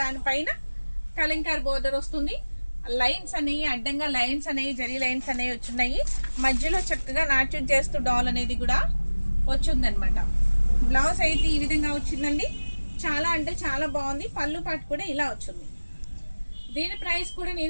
దానిపైన కలంకార్ బోర్డర్ వస్తుంది. లైన్స్ అనేవి అడ్డంగా లైన్స్ అనేవి జరీ లైన్స్ అనేవి వచ్చున్నాయి. మధ్యలో చక్కగా నాట్యం చేస్తూ డాల్ అనేది కూడా వచ్చింది అనమాట. బ్లౌజ్ అయితే ఈ విధంగా వచ్చిందండి. చాలా అంటే చాలా బాగుంది. పళ్ళు పాటు కూడా ఇలా వచ్చింది. దీని ప్రైస్ కూడా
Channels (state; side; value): inverted; both; correlation -1.00